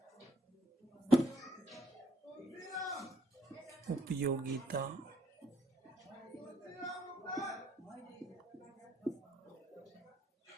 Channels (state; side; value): normal; both; correlation 0.68